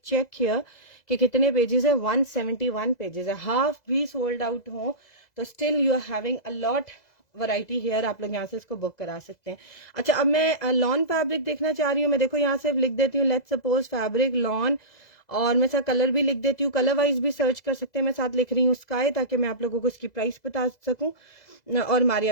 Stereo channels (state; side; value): late; right; 2.0 ms